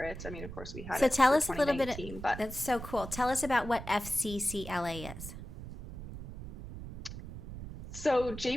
it. I mean, of course we had So it tell for us a little bit. 2019, but That's so cool. Tell us about what FCCLA is. So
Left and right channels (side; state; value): right; noise; rumble, 11 dB below the sound